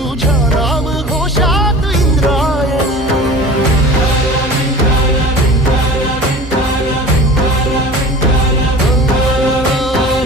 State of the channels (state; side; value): normal; both; correlation 0.38